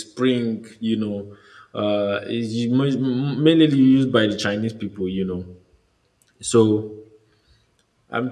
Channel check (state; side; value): identical; both; correlation 1.00